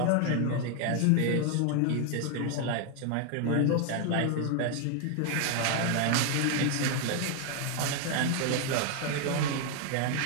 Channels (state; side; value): different; both; correlation 0.00